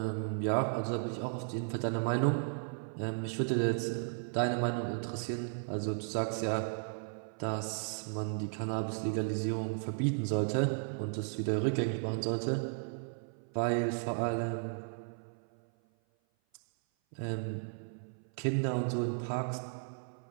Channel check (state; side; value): silent; left; 54 dB below the other